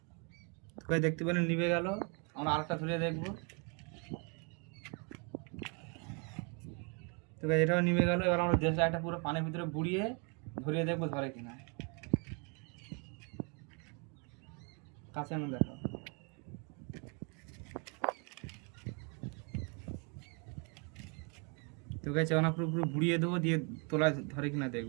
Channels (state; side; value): quieter; left; 34.3 dB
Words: তো গাইস দেখতে পেলেন নিভে গেল। আমরা আরেকটা ধরে দেখবো। তো গাইস এটাও নিভে গেল। এবার আমরা দেশলাইটা পুরো পানির ভিতরে বুড়িয়ে ধরিয়ে দেখবো ধরে কিনা। কাছে না দেখাও। তো গাইস আমরা পুরো বুড়িয়ে দেবো, দিয়ে তোলায় ধরে কিনা